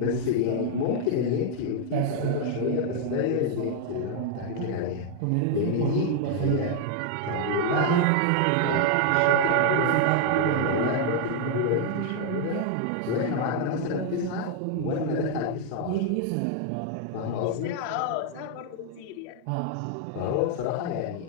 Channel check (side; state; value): both; different; correlation 0.00